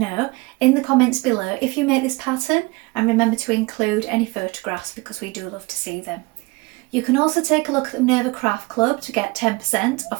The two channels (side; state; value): left; quieter; 25.2 dB